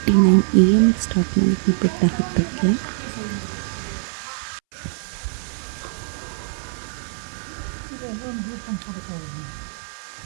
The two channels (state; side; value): silent; left; 64 dB below the other